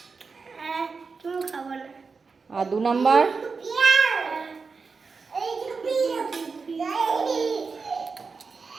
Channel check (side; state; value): left; quieter; 4.8 dB